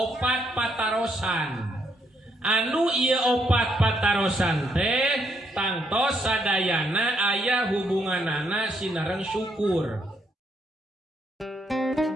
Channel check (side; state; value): both; normal; correlation 0.74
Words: patarosan anu ieu opat patarosan teh tangtos sadayana aya hubunganana sinareng syukur.